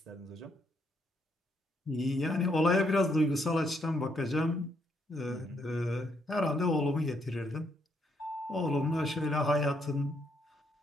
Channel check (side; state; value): both; normal; correlation 0.74